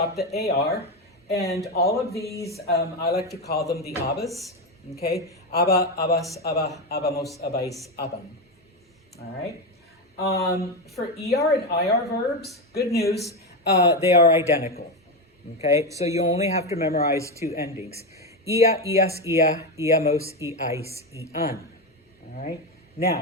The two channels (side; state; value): both; normal; correlation 0.12